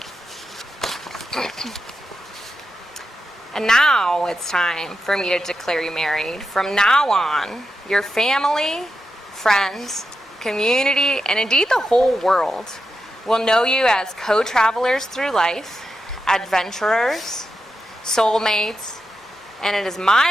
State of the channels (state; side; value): normal; both; correlation 0.87